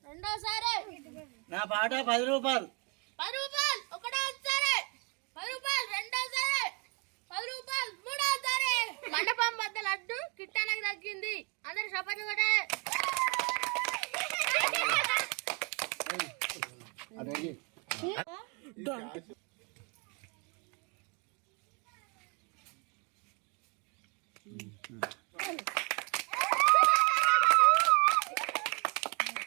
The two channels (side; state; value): left; quieter; 33.2 dB